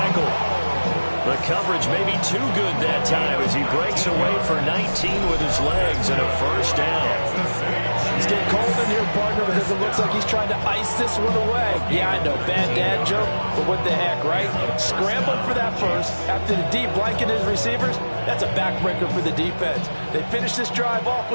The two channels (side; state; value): both; inverted; correlation -1.00